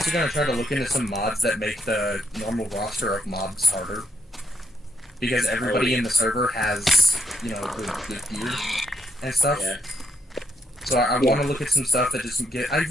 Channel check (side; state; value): both; normal; correlation 0.77